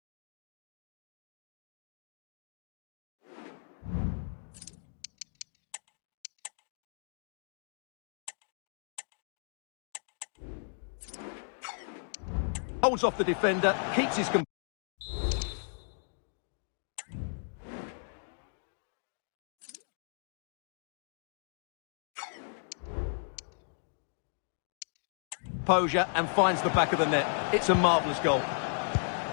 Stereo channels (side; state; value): right; silent; digital silence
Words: Holds off the defender, keeps his... composure and finds the back of the net. It's a marvellous goal.